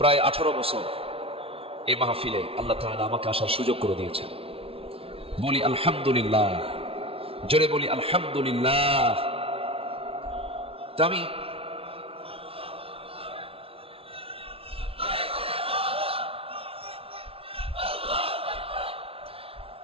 18 বছর এই মাহফিলে আল্লাহ তাআলা আমাকে আসার সুযোগ করে দিয়েছেন। বলি আলহামদুলিল্লাহ, জোরে বলি আলহামদুলিল্লাহ। তো আমি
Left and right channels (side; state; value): left; late; 0.27 ms